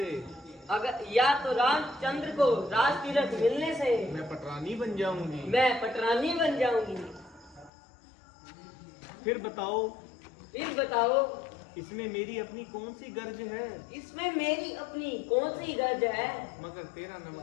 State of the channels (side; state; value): right; drops out; at 7.7 s